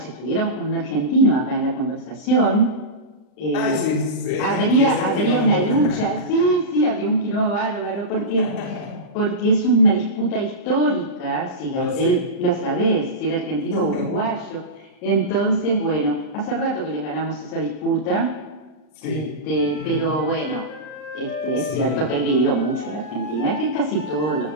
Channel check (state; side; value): late; right; 39 ms